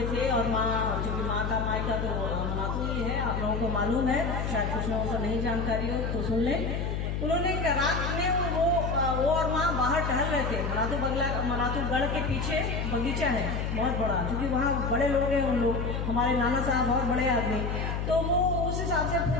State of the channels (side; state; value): left; noise; hum, 2 dB below the sound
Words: थे और माँ, चूंकि माँ का मायका तो मनातू ही है, आप लोगों को मालूम है, शायद कुछ लोगों को नहीं जानकारी हो तो सुन लें। उन्होंने रात में वो और माँ बाहर टहल रहे थे। मनातू गढ़ के पीछे बगीचा है बहुत बड़ा, क्योंकि वहाँ बड़े लोग हैं, उन लोग हमारे नाना साहब बहुत बड़े आदमी, तो वो उस हिसाब से